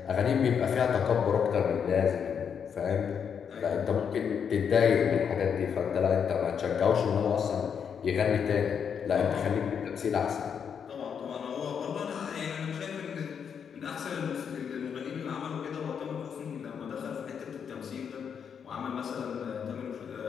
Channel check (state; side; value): quieter; right; 7.3 dB